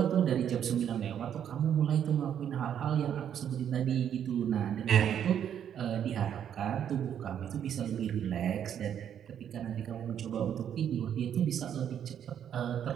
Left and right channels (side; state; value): left; quieter; 9.3 dB